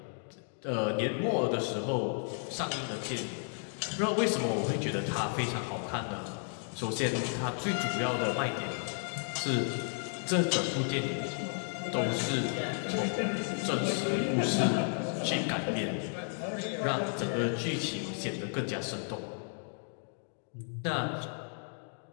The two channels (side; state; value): right; silent; 56 dB below the other